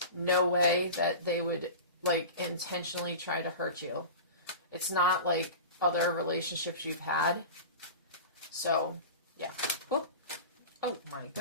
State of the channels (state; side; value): inverted; both; correlation -0.32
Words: no way that they would, like, intentionally try to hurt you. It's not like other relationships you've had. So, yeah. Whoop. Oh, my